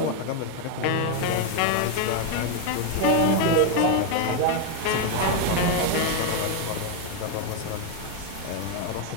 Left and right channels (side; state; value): both; different; correlation 0.01